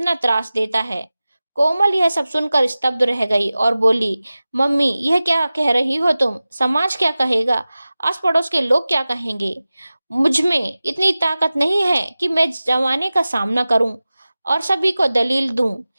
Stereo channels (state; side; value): inverted; both; correlation -0.97